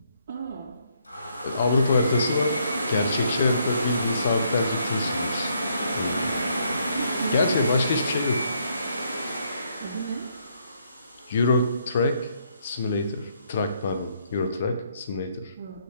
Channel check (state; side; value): inverted; both; correlation -0.72